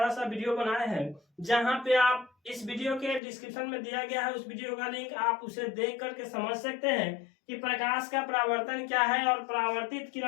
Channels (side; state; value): right; drops out; at 3.2 s